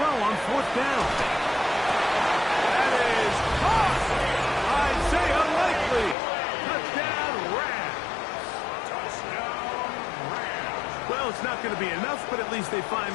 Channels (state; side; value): drops out; right; at 6.2 s